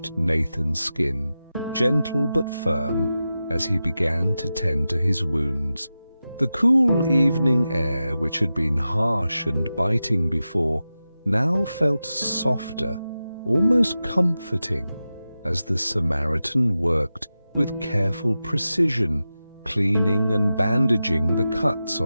Nathan's skin, gentle but firm, as he began to tend to his wounds. The cool evening air, which had been harsh and biting before, now felt softer, almost comforting, as the Samaritan worked with careful precision, cleaning and bandaging the cuts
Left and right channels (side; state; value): both; inverted; correlation -0.93